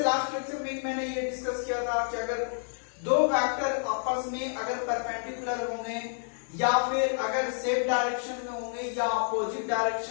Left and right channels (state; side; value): silent; right; digital silence